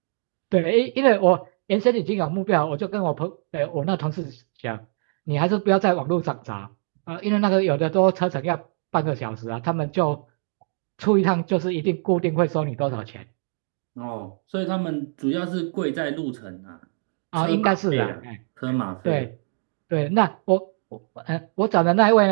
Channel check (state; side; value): silent; left; 63 dB below the other